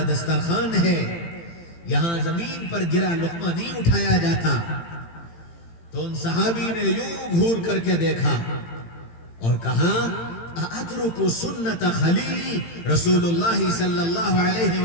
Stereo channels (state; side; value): late; right; 18 ms